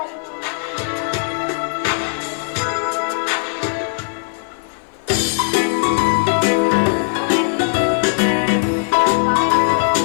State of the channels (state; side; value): silent; right; 55 dB below the other